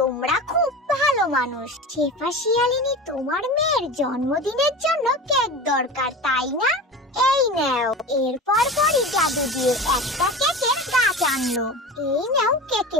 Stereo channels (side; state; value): both; normal; correlation 0.31